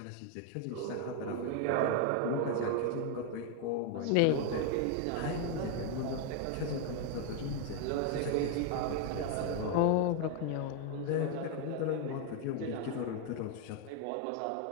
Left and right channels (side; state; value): both; different; correlation 0.01